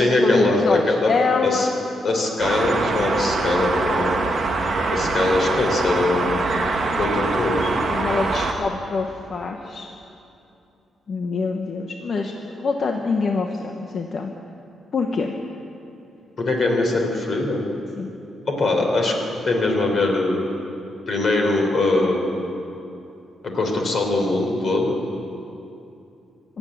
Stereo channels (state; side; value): normal; both; correlation 0.80